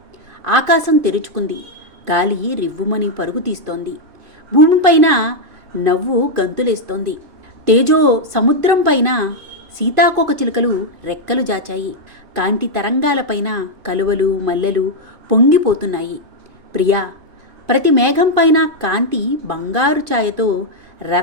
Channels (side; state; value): left; late; 2.5 ms